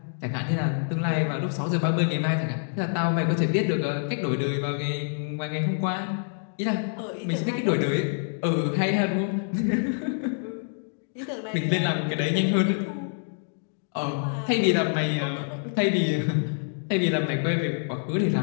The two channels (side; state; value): right; silent; digital silence